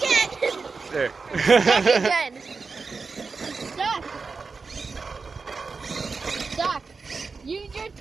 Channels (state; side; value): quieter; left; 4.6 dB